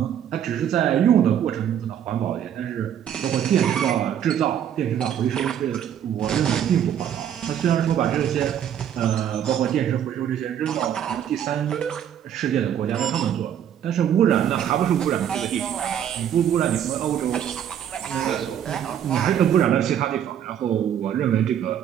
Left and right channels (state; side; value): quieter; left; 9.7 dB